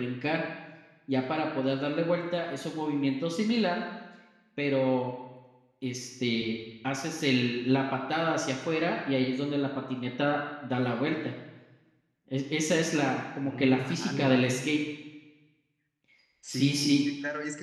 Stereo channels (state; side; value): identical; both; correlation 1.00